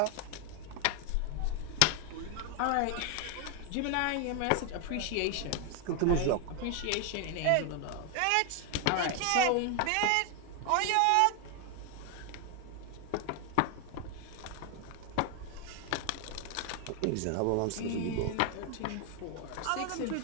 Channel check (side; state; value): both; different; correlation 0.00